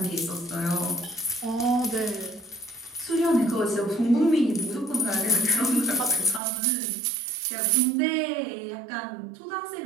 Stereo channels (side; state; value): left; drops out; at 6.4 s